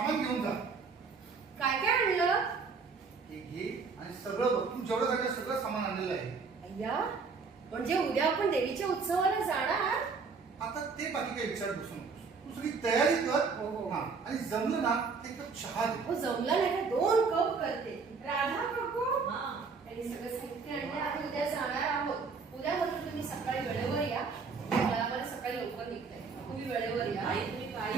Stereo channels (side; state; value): left; quieter; 4.9 dB